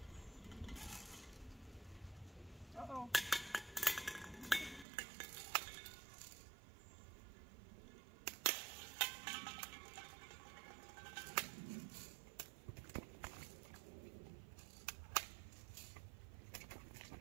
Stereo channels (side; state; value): left; drops out; at 4.9 s